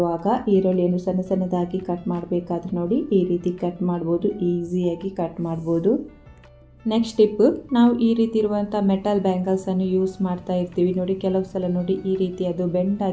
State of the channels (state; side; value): identical; both; correlation 1.00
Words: ಈರುಳ್ಳಿಯನ್ನು ಸಣ್ಣ ಸಣ್ಣದಾಗಿ ಕಟ್ ಮಾಡಬೇಕಾದ್ರೆ ನೋಡಿ ಈ ರೀತಿ ಕಟ್ ಮಾಡ್ಬೋದು. ಈಸಿಯಾಗಿ ಕಟ್ ಮಾಡ್ಬೋದು. ನೆಕ್ಸ್ಟ್ ಟಿಪ್, ನಾವು ಈ ರೀತಿ ಇರುವಂಥ ಮೆಟಲ್ ಬ್ಯಾಂಗಲ್ಸನ್ನು ಯೂಸ್ ಮಾಡ್ತಾ ಇರ್ತೀವಿ ನೋಡಿ. ಕೆಲವು ಸಲ ನೋಡಿ ಈ ರೀತಿ ಅದು ಬೆಂಡ್